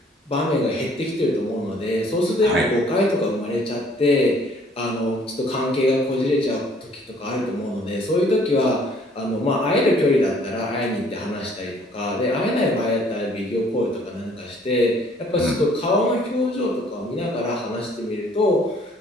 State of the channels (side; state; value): both; normal; correlation 0.59